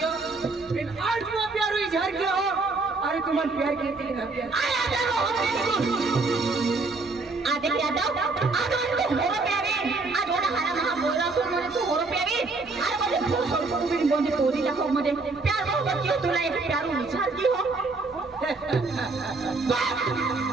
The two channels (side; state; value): left; quieter; 3.7 dB